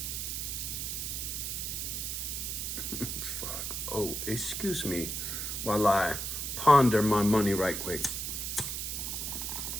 Fuck. Oh, excuse me while I ponder my money right quick.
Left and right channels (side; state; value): right; noise; hiss, 3 dB below the sound